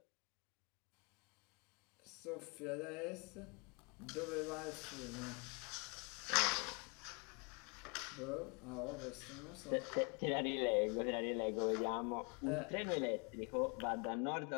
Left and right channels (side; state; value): right; quieter; 32.6 dB